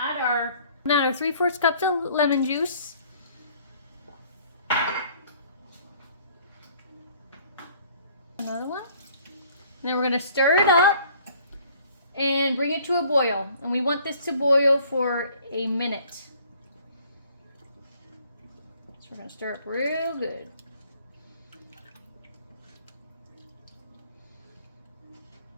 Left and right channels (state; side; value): inverted; both; correlation -0.56